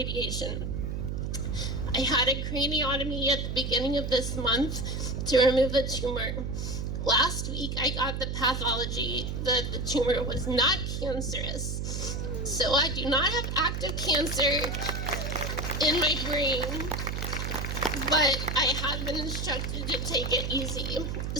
I had a craniotomy at the beginning of this month to remove the tumor. Last week, I got the pathology that the tumor was not cancerous. So I do not have active cancer in my brain, but I have been instructed to take it easy.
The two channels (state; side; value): noise; right; hum, 3 dB below the sound